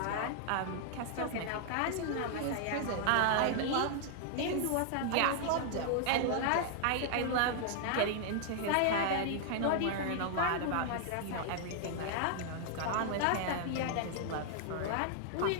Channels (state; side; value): different; both; correlation -0.01